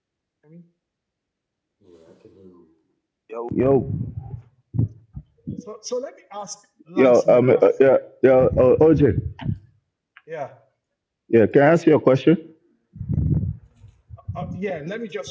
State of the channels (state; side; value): identical; both; correlation 1.00